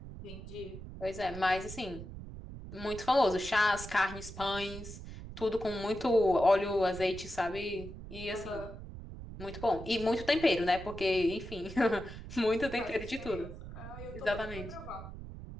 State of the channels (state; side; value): noise; right; rumble, 12 dB below the sound